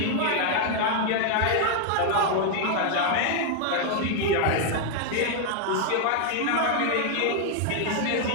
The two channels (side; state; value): both; different; correlation 0.00